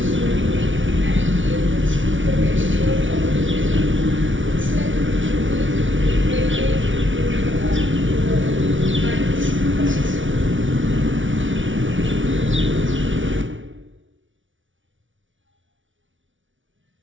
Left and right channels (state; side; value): late; left; 0.56 ms